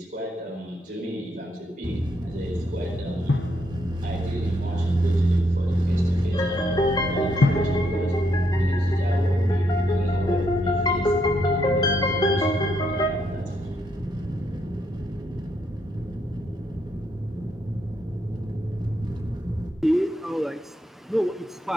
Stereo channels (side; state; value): both; normal; correlation 0.76